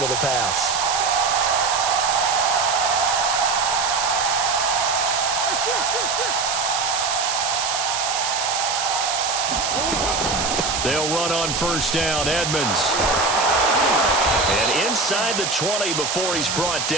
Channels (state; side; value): noise; right; hiss, 1 dB below the sound